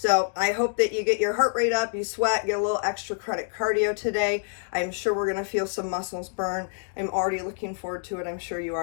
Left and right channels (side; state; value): right; silent; digital silence